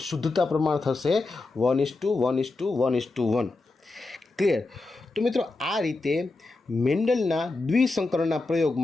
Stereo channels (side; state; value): right; quieter; 3.4 dB